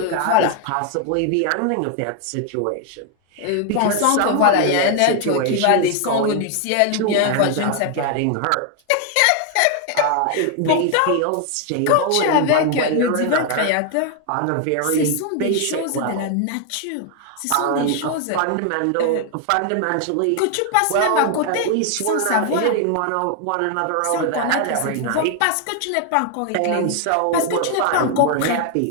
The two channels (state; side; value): different; both; correlation 0.00